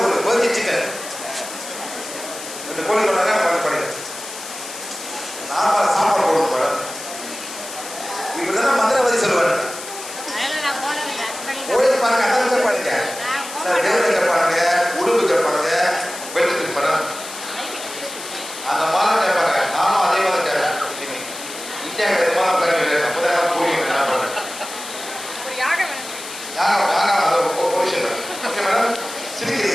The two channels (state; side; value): noise; left; hiss, 11 dB below the sound